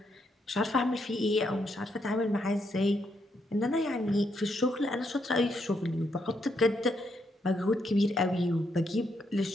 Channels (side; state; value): both; normal; correlation 0.78